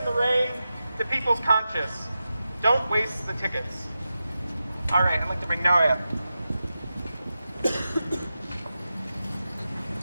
the rain, to people's conscience. Don't waste the tickets. All right, I'd like to bring Noah up.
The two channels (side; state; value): both; inverted; correlation -0.91